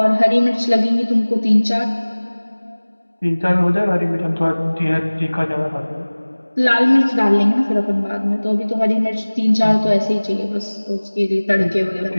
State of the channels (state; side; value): inverted; both; correlation -1.00